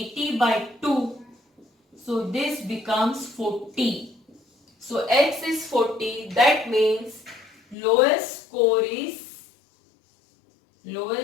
by 2. So this becomes 40. So x is 40. That means lowest score is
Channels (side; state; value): right; drops out; at 7.8 s